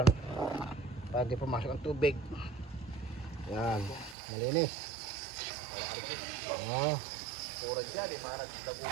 para hindi pumasok ang tubig. Yan, malinis.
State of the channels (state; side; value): drops out; left; at 4.2 s